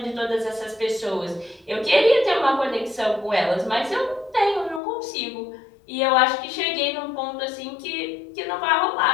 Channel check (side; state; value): right; drops out; at 4.8 s